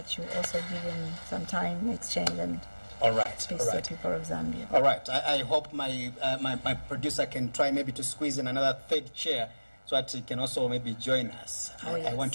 you also give him some time, exchange, and All right. speak to the people of Zambia. All right. I hope my producer can try maybe to squeeze in another third chair so that he can also maybe join us. I want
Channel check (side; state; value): both; inverted; correlation -1.00